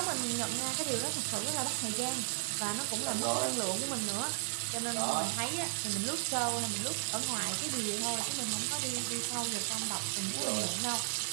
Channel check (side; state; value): left; silent; digital silence